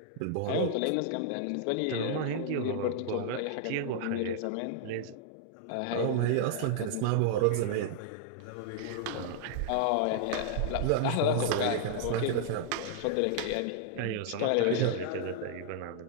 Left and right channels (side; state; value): both; different; correlation -0.01